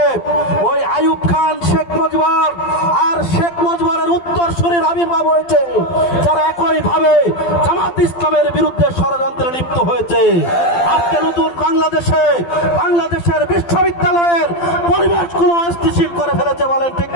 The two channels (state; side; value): late; right; 12 ms